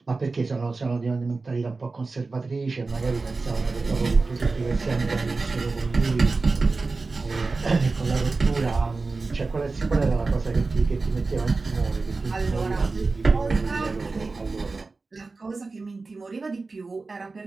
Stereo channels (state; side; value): quieter; left; 3.8 dB